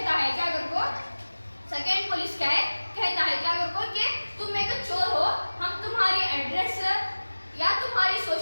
है क्या करको, सेकेंड पुलिस क्या है कहता है क्या करको कि तुम एक चोर हो, हम तुम्हारी एड्रेस या तुम्हारी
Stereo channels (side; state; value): both; inverted; correlation -1.00